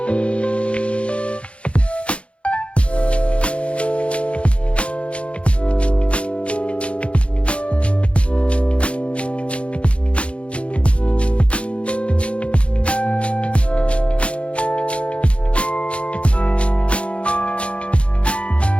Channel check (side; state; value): right; late; 0.060 ms